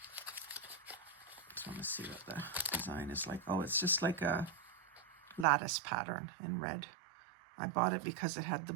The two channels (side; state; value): left; drops out; at 5.5 s